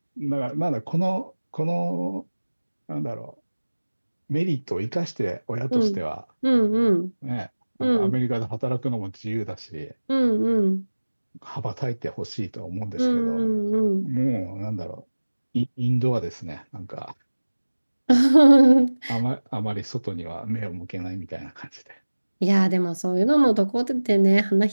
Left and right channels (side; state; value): both; inverted; correlation -1.00